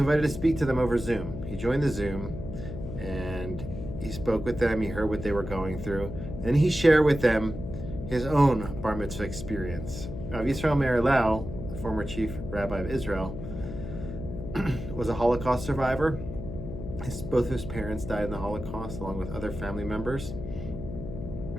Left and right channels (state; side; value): noise; left; hum, 8 dB below the sound